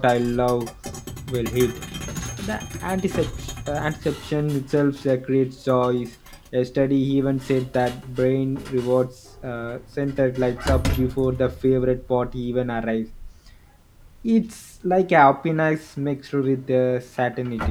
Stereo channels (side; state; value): both; identical; correlation 1.00